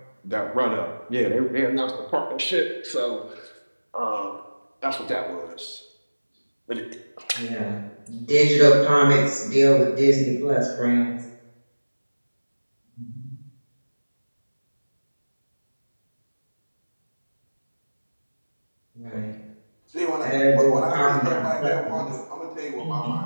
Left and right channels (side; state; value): both; inverted; correlation -1.00